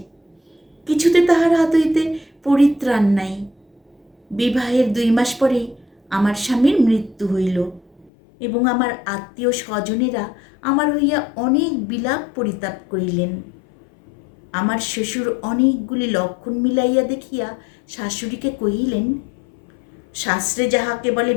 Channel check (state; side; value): drops out; right; at 8.1 s